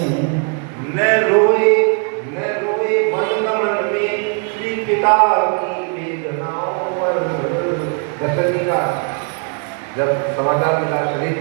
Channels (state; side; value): quieter; left; 39.2 dB